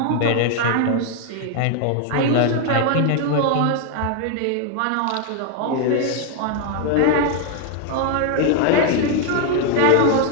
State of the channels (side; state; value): both; different; correlation 0.00